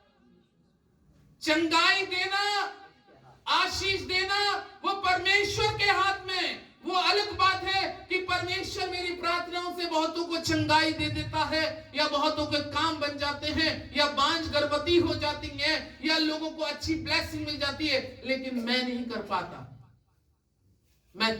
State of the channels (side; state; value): both; identical; correlation 1.00